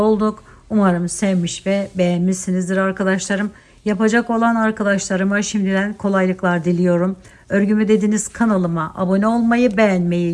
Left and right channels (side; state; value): both; identical; correlation 1.00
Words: Umarım sevmiş ve beğenmişsinizdir arkadaşlarım. Yapacak olan arkadaşlarıma şimdiden kolaylıklar diliyorum. Örgümü Dediniz kanalıma abone olmayı,